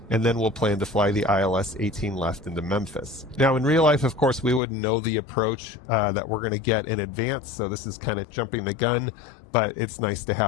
and then we'll plan to fly the ILS 18 left into Memphis. Now, in real life, of course, we wouldn't know the approach that we're going to get in advance, so this is kind of jumping the gun, but it's nice to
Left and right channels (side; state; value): right; drops out; at 4.6 s